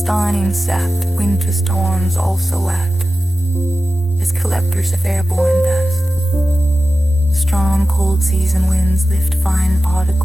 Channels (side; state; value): both; normal; correlation 0.94